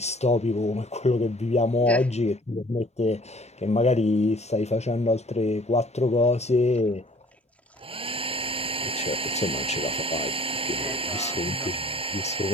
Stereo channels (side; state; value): both; normal; correlation 0.53